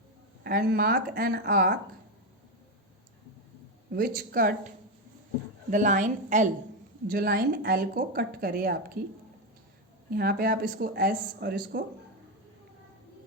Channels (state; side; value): normal; both; correlation 0.09